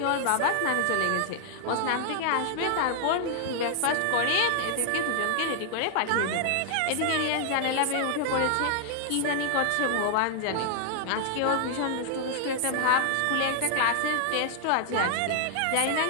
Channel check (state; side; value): different; both; correlation -0.01